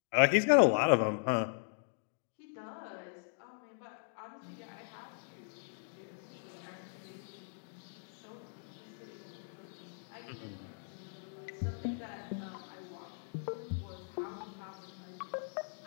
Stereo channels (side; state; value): right; silent; digital silence